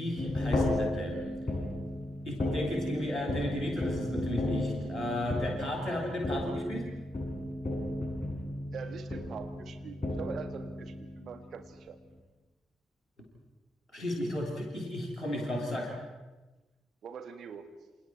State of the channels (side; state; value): both; normal; correlation 0.83